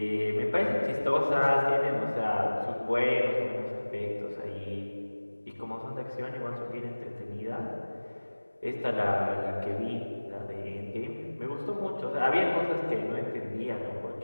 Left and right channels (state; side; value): inverted; both; correlation -1.00